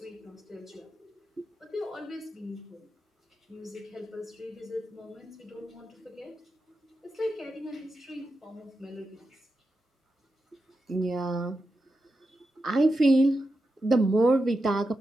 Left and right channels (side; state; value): both; normal; correlation 0.89